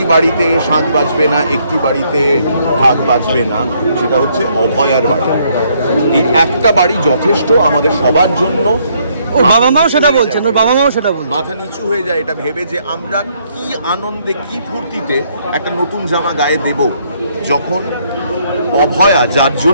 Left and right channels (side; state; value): both; inverted; correlation -0.70